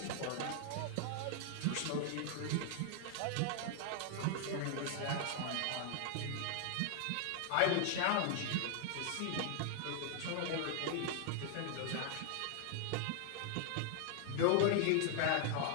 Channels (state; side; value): different; both; correlation 0.00